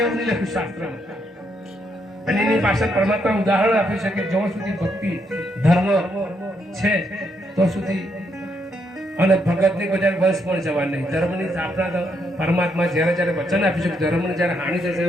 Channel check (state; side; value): normal; both; correlation 0.76